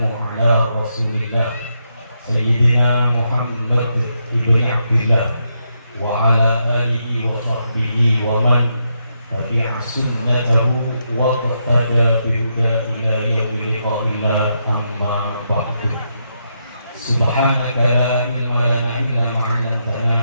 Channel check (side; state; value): both; inverted; correlation -0.81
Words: ala rasulillah Sayyidina Muhammad ibn Abdillah wa ala alihi wa sahbihi wa man tabi'a sunnatahu wa qattada bihuda ila yawmil liqa'illah, amma ba'du. Subhanaka la ilma lana illa ma